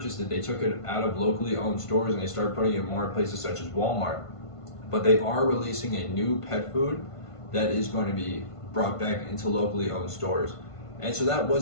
it, they took it out of locally owned stores and they started putting it in more places such as Walmart. But they are releasing a new pet food that is going to be brought back into locally owned stores. And so that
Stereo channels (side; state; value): right; late; 1.5 ms